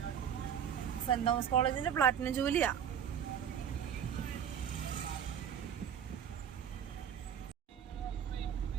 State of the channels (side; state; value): left; quieter; 8.7 dB